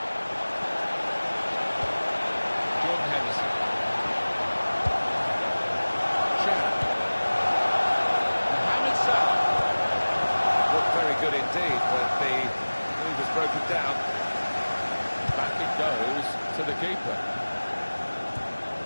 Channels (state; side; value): inverted; both; correlation -1.00